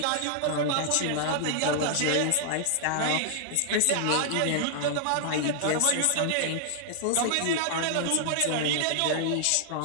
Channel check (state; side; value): different; both; correlation 0.00